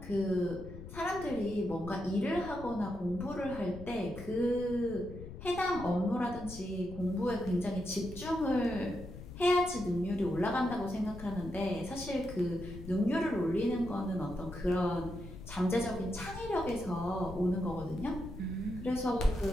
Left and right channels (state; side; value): noise; left; rumble, 12 dB below the sound